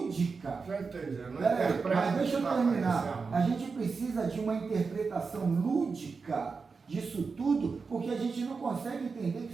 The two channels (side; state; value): left; quieter; 4.8 dB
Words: Já entendi, não mas deixa eu terminar. A gente precisa de uma interpretação lúdica disso tudo, porque a gente não consegue entender